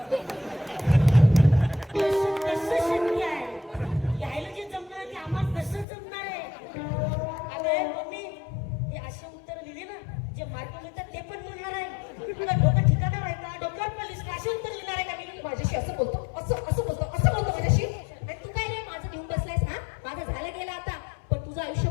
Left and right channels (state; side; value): drops out; right; at 5.9 s